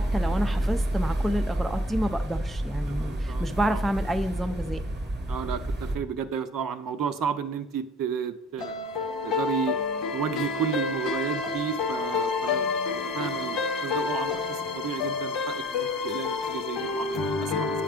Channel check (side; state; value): both; normal; correlation 0.51